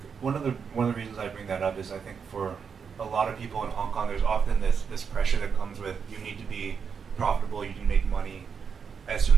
One of the reasons I bring that up is I think for a lot of people in Hong Kong, there's often this pressure that comes with you need to be profitable, you can make money as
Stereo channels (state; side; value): quieter; left; 6.4 dB